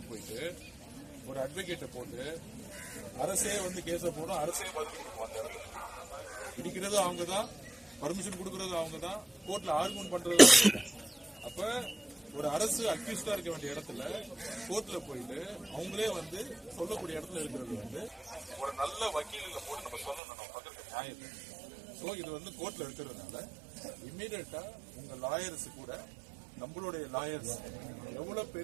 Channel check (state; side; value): drops out; left; at 20.2 s